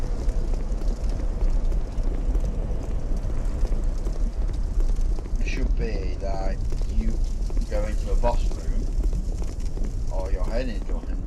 It should be that you go into a boss room or you're heading into one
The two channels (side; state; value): both; identical; correlation 1.00